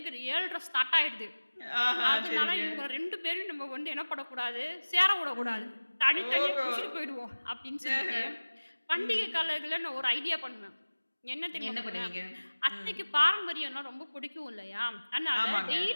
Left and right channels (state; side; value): inverted; both; correlation -1.00